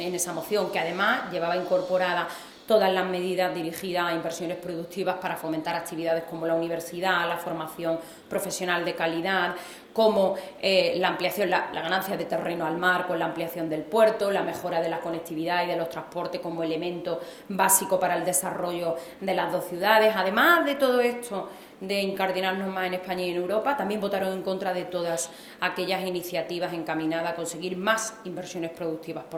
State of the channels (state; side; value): identical; both; correlation 1.00